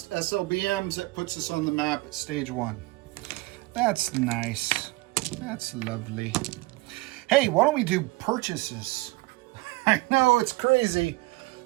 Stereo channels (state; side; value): quieter; left; 21.9 dB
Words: SLBMs. That puts us on the map at stage 1. That's nice. That's lovely. Hey, why don't we do purchases? I know it's crazy,